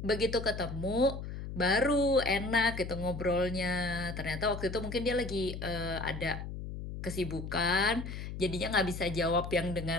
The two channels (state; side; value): noise; left; hum, 7 dB below the sound